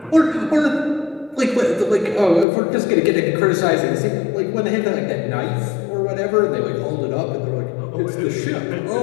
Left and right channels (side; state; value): right; drops out; at 2.5 s